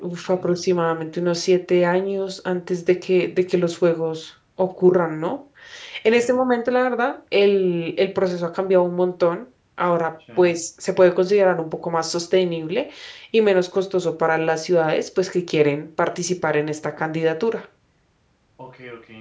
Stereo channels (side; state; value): both; identical; correlation 1.00